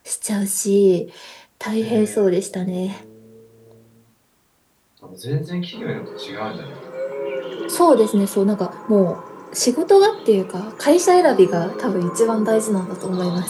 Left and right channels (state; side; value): identical; both; correlation 1.00